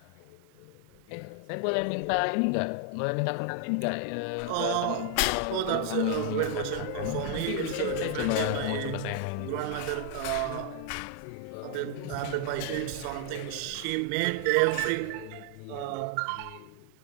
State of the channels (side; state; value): both; different; correlation 0.00